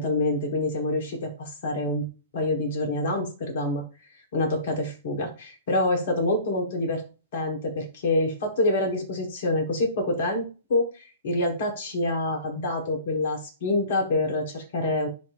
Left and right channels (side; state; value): both; inverted; correlation -0.44